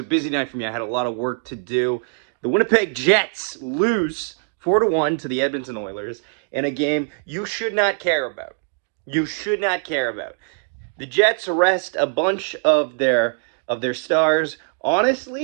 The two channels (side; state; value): left; quieter; 39.9 dB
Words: busy night for me. I had a lot of work to do. The Winnipeg Jets lose 4-1 to the Edmonton Oilers in a game you should not care about. You should not care about. The Jets rest a bunch of their stars.